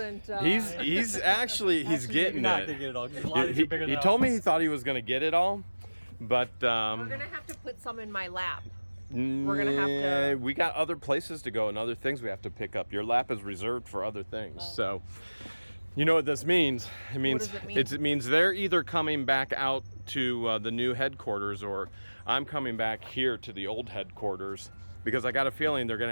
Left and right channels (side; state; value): both; inverted; correlation -1.00